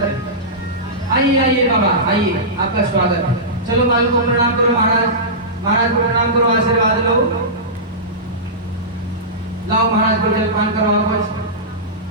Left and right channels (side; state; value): both; normal; correlation -0.17